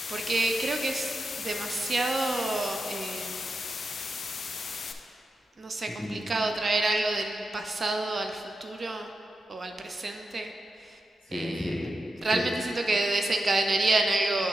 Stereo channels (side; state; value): both; normal; correlation 0.88